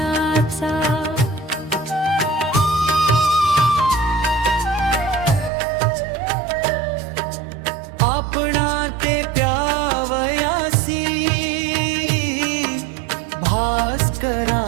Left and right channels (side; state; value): left; drops out; at 5.5 s